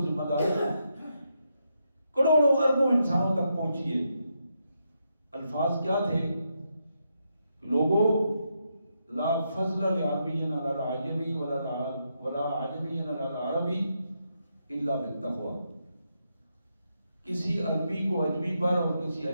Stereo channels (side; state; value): both; inverted; correlation -0.82